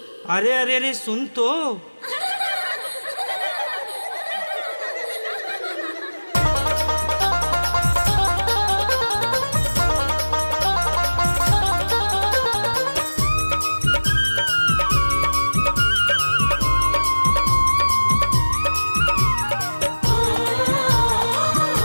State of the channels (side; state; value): both; inverted; correlation -1.00